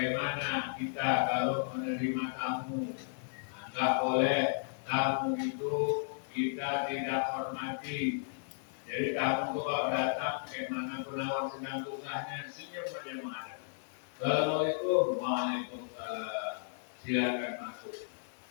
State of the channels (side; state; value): right; silent; digital silence